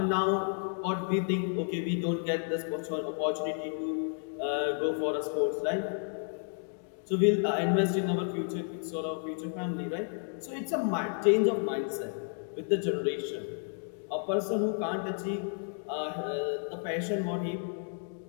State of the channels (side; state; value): right; silent; 57 dB below the other